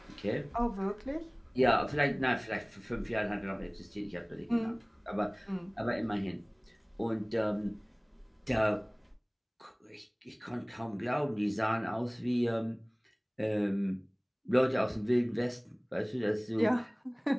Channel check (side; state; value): both; identical; correlation 1.00